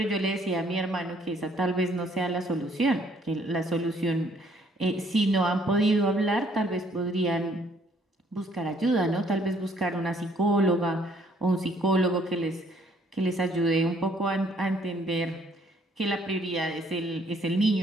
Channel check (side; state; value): both; normal; correlation 0.64